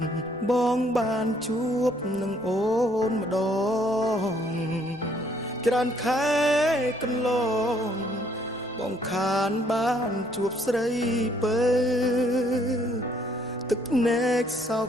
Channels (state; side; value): noise; left; rumble, 29 dB below the sound